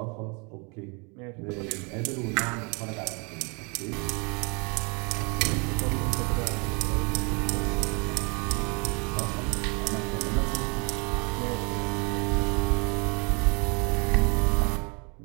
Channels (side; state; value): left; quieter; 32.3 dB